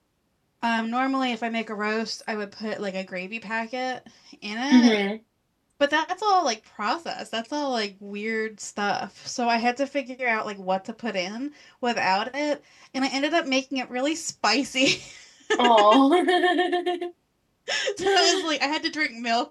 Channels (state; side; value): identical; both; correlation 1.00